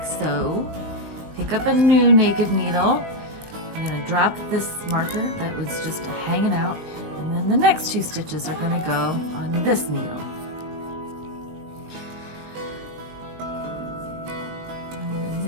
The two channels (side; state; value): left; late; 20 ms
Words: so. Pick up a new naked needle. I'm going to drop this marker that was just hanging out, and then the next 2 stitches are going to go on this needle.